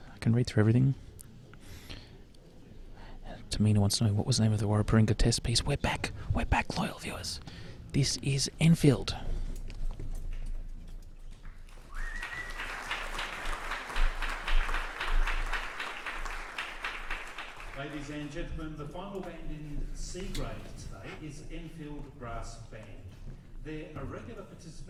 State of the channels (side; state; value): both; identical; correlation 1.00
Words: can read through everything. Tamina wants to know, what was the name of the Warraparinga test piece? We're back, loyal viewers. This is Enfield. Ladies and gentlemen, the final band in C grade today is Enfield Brass Band. They are regular